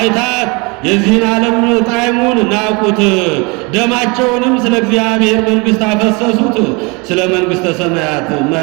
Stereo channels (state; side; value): quieter; left; 28.7 dB